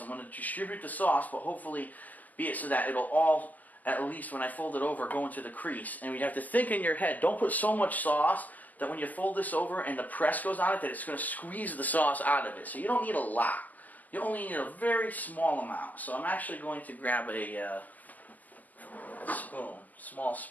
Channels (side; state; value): right; late; 0.080 ms